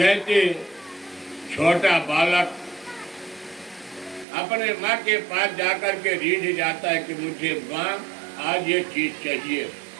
छोटा बालक अपने माँ के पास जाकर के रीझ जाता है कि मुझे माँ आज ये चीज चाहिए,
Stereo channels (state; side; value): drops out; left; at 4.2 s